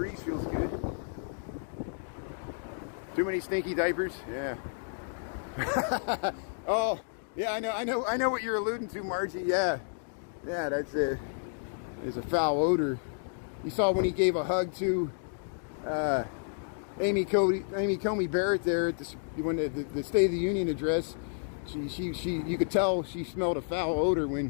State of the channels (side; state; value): right; silent; digital silence